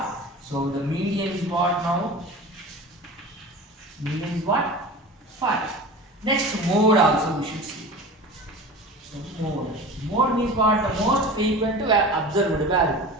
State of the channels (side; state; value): both; normal; correlation 0.35